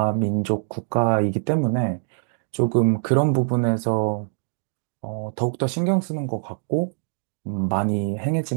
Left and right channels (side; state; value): left; silent; digital silence